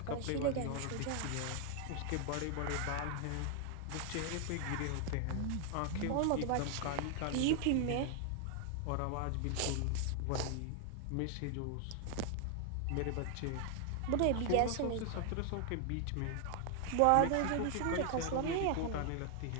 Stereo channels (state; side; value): different; both; correlation 0.00